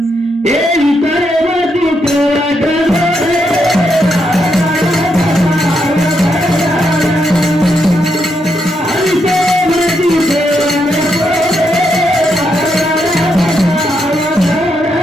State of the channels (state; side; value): normal; both; correlation 0.80